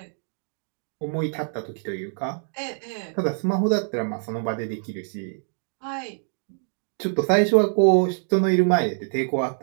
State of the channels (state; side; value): silent; left; 62 dB below the other